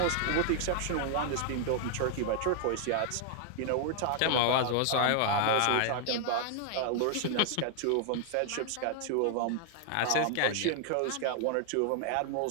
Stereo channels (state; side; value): different; both; correlation 0.00